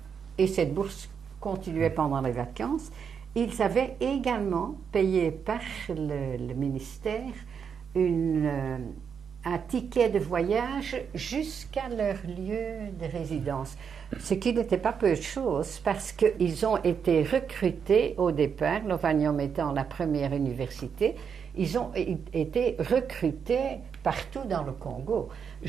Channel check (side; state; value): left; quieter; 6.9 dB